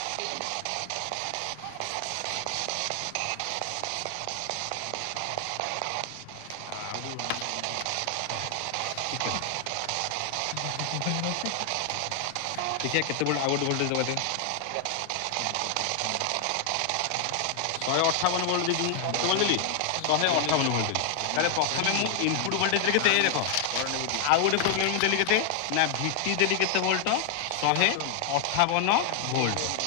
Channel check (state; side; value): different; both; correlation 0.00